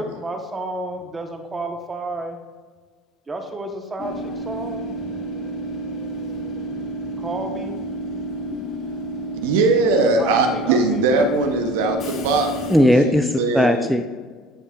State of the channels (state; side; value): normal; both; correlation 0.42